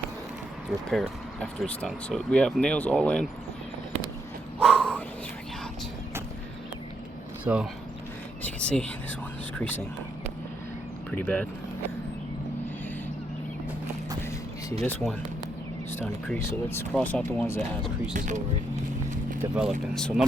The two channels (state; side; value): normal; both; correlation 0.77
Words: the repair after it's done. So we have nails all in. Whew, it's freaking hot. So as you can see, this one is creasing pretty bad. You see this one is starting to crease, so let's cross out the ones that has creases already developing. So